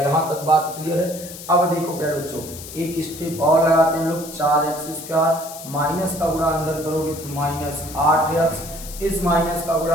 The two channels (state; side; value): noise; left; hiss, 13 dB below the sound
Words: तक बात क्लियर है? अब देखो प्यारे बच्चों एक स्टेप और लगाते हैं हम लोग। 4x² माइनस का गुणा अंदर करोगे तो -8x, इस माइनस का